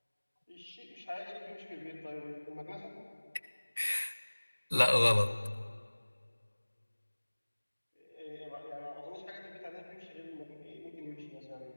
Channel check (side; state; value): both; inverted; correlation -1.00